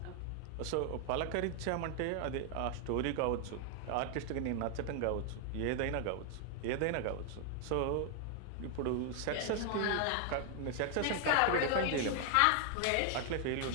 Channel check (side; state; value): both; different; correlation 0.00